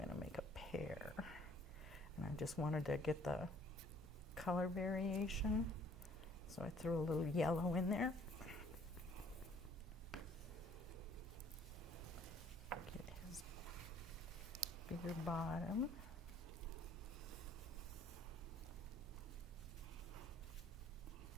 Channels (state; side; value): normal; both; correlation 0.58